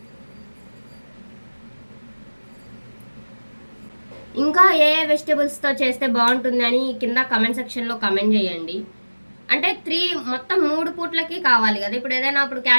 ఇంకా ఏ వెజిటేబుల్స్తో చేస్తే బాగుంటుంది అని కింద కమెంట్ సెక్షన్లో కమెంట్ చేయండి. అంటే మొత్తం 3 పూట్లకి కావాలి కదా. ఇప్పుడు ఏదైనా ఇప్పుడు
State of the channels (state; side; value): inverted; both; correlation -1.00